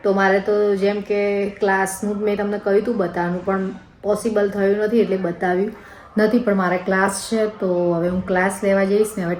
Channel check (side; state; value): both; identical; correlation 1.00